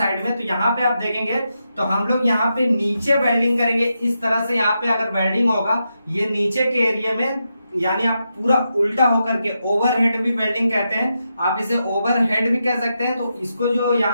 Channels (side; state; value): both; inverted; correlation -0.86